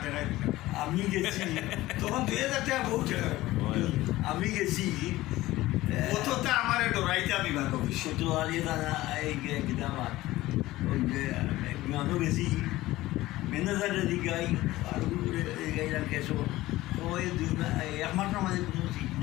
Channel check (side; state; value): right; quieter; 17.3 dB